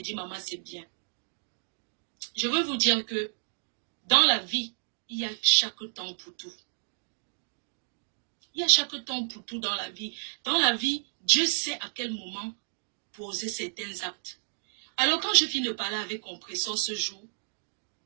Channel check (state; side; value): silent; left; digital silence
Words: maman, c'est bien. Je veux vous dire que dans la vie, il y a chaque temps pour tout. Il y a chaque temps pour tout dans la vie. Dans la vie, Dieu sait à quel moment poser certains actes. Alors quand je finis de parler avec Compressor ce jour,